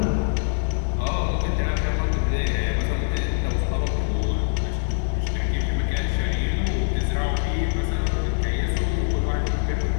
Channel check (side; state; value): right; silent; 63 dB below the other